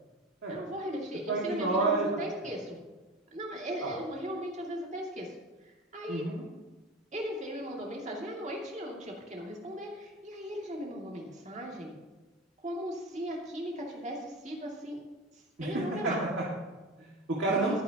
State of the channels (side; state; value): both; normal; correlation 0.30